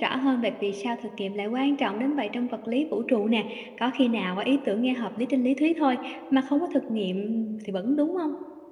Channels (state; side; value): identical; both; correlation 1.00